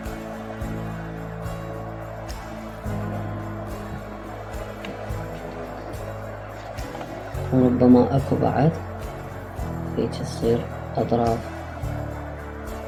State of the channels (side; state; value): both; identical; correlation 1.00